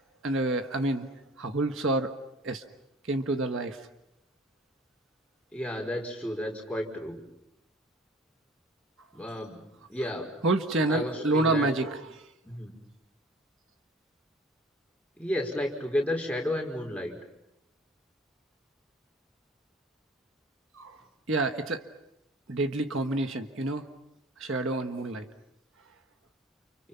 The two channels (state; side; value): normal; both; correlation 0.47